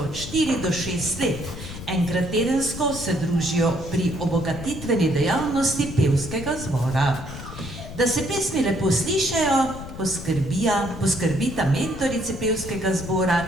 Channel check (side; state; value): left; noise; rumble, 11 dB below the sound